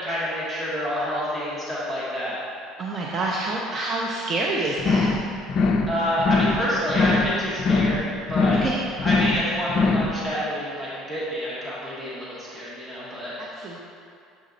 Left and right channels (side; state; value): both; normal; correlation 0.67